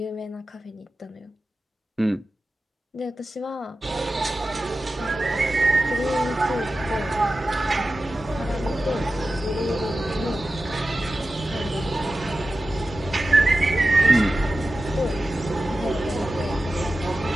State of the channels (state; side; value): normal; both; correlation 0.94